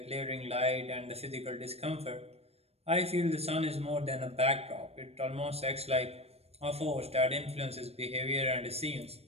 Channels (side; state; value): left; late; 0.30 ms